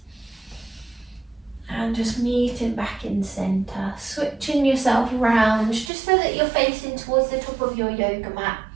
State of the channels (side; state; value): left; drops out; at 5.9 s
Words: And just meeting back in centre, switching yourself around just so that you're facing towards the top of your yoga mat.